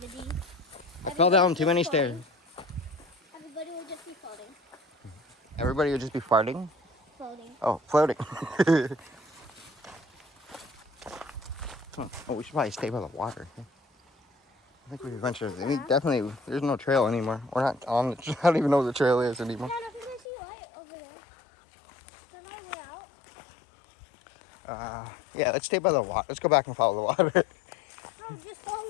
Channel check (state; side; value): drops out; right; at 20.2 s